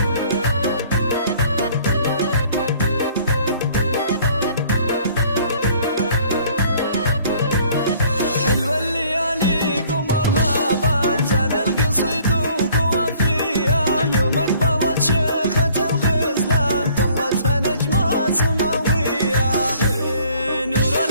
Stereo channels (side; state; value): both; inverted; correlation -0.56